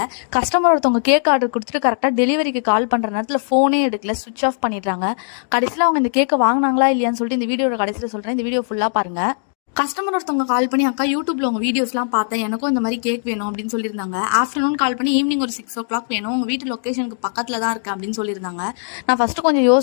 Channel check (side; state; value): right; silent; digital silence